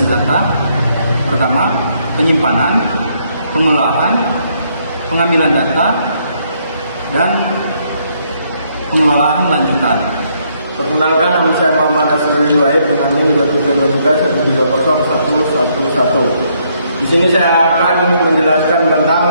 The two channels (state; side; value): inverted; both; correlation -0.72